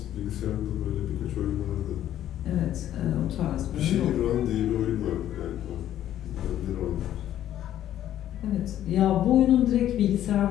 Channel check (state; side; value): quieter; right; 11.8 dB